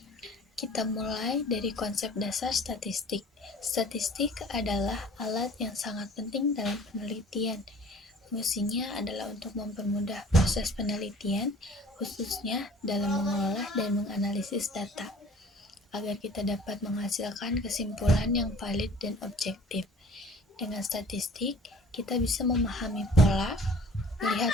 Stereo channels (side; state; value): both; normal; correlation 0.49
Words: Kita mulai dari konsep dasar statistik. Statistik adalah alat yang sangat penting dalam penelitian. Fungsinya adalah untuk mempermudah proses penelitian, khususnya dalam mengolah dan menganalisis data, agar kita dapat menghasilkan kesimpulan yang valid dan objektif. Dengan statistik, kita bisa memahami pola,